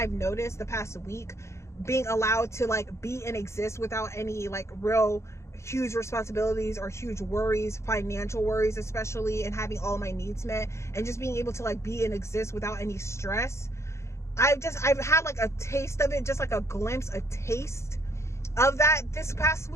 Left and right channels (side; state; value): right; late; 0.14 ms